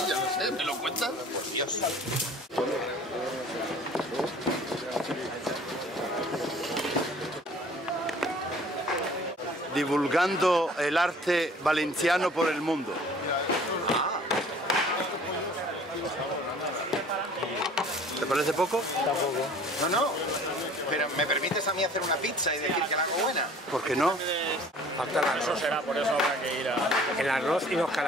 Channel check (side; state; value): both; normal; correlation 0.50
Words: lo sé, ¿me lo cuentan? Por Dios. Divulgando el arte valenciano por el mundo. ¿Te parece poco? Tampoco. No, pero ¿me permites a mí hacer una pizza y decir que la hago buena? ¿Por qué no? Falta el arroz, será, por eso habrá que ir a... El arroz y los